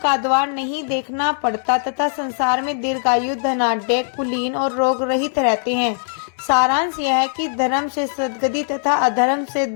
द्वार नहीं देखना पड़ता तथा संसार में दीर्घायु, धनाढ्य, कुलीन और रोग रहित रहते हैं। सारांश यह है कि धर्म से सद्गति तथा अधर्म से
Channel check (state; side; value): silent; right; digital silence